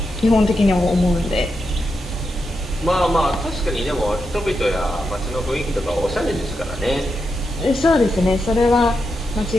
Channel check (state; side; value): normal; both; correlation 0.86